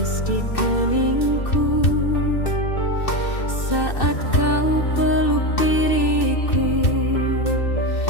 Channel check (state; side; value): late; right; 2.6 ms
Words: di keningku saat kau peluk diriku